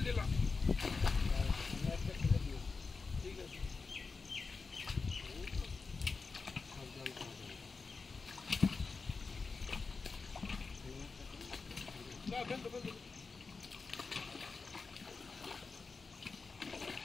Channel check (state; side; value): quieter; right; 4.4 dB